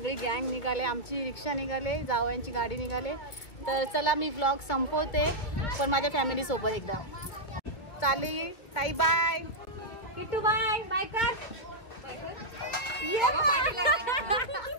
गँग निघाले, आमची रिक्षा निघाले, जावयांची गाडी निघाले. तर चला मी व्लॉग संपवते पण माझ्या फॅमिली सोबत एकदा चालली. ताई बाय. किट्टू बाय बाय कर.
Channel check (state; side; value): late; right; 2.0 ms